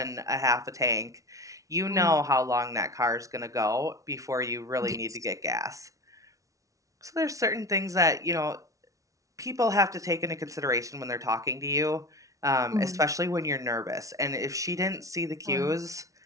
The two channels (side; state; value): left; late; 0.16 ms